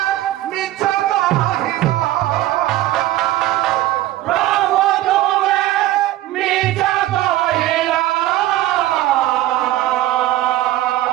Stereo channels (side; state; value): left; quieter; 15.1 dB